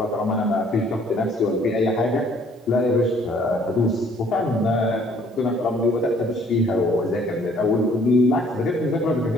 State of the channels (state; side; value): normal; both; correlation 0.60